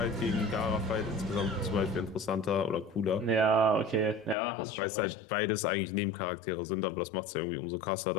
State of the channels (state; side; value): drops out; right; at 4.4 s